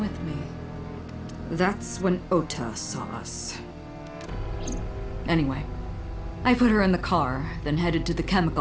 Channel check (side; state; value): both; identical; correlation 1.00